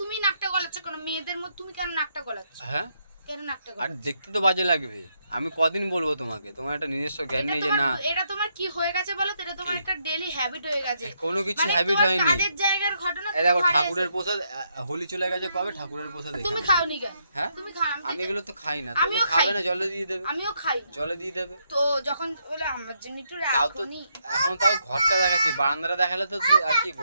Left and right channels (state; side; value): inverted; both; correlation -0.77